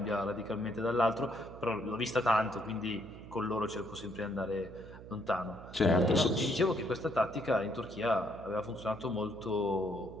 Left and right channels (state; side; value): noise; right; hum, 15 dB below the sound